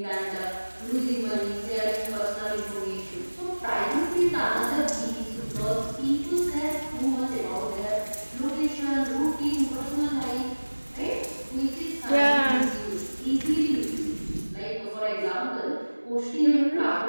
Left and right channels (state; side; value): inverted; both; correlation -1.00